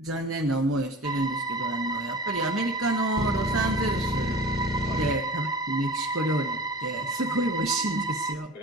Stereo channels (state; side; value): normal; both; correlation 0.38